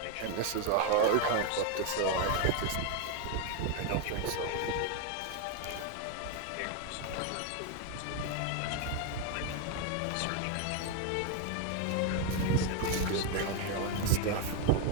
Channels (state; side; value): different; both; correlation 0.01